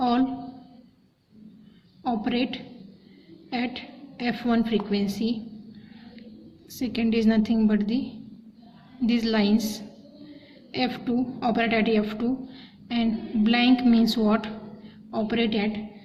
operate at f1 frequency. Second is nothing but these lines, f2 operate at f2, and blank means what? Operate at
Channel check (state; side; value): identical; both; correlation 1.00